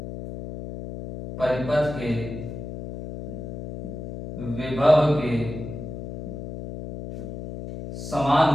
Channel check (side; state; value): left; noise; hum, 9 dB below the sound